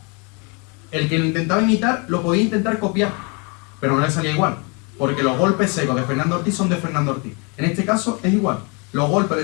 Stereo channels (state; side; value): quieter; right; 32.6 dB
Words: El que lo intentaba imitar lo podía intentar copiar, pero no le salía igual, porque los golpes secos de Fernando Ortiz son de Fernando Ortiz. En este caso es igual. Los golpes